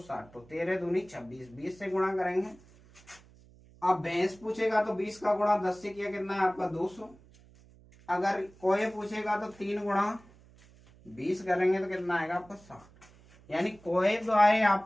तो 13 दूनी 26, 20 से गुणा करेंगे। अब भैंस पूछेगा तो 20 का गुणा 10 से किया कितना है आपका 200। अगर कोए पूछेगा तो 3 गुणा 20 करेंगे तो कितना आएगा आपका 60। यानी कोए तो आए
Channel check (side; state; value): right; noise; hum, 25 dB below the sound